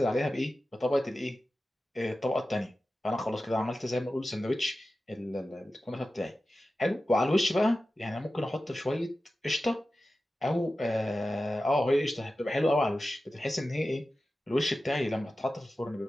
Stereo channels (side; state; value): both; normal; correlation 0.94